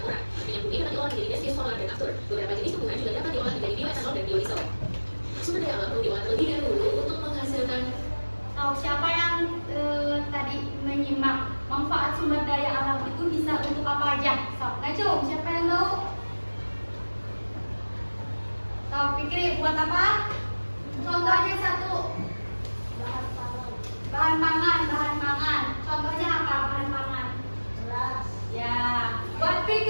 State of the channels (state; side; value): inverted; both; correlation -1.00